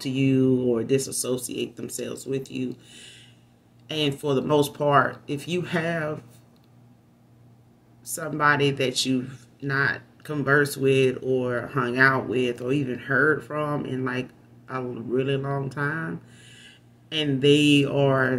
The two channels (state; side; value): identical; both; correlation 1.00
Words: you or disassociate themselves with you. And for the most part, if you have somebody that you've not conversed with or hung out with or even heard from in like a really long time, and they